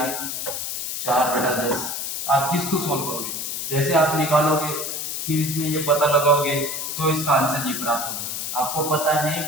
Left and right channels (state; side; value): noise; left; hiss, 4 dB below the sound